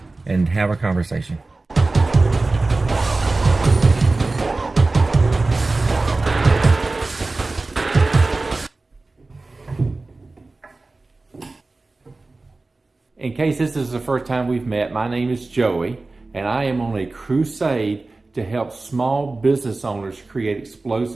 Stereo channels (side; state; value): left; quieter; 3.3 dB